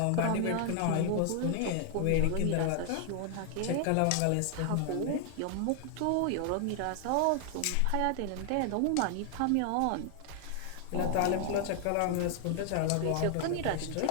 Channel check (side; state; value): both; different; correlation 0.00